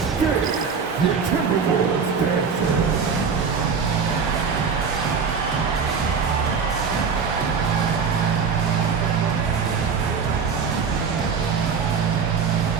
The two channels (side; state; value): left; quieter; 5.8 dB